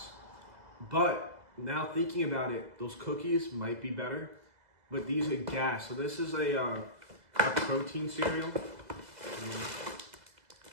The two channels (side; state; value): left; late; 2.0 ms